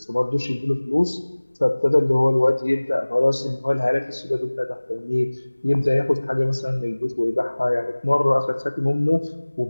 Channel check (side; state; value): both; inverted; correlation -1.00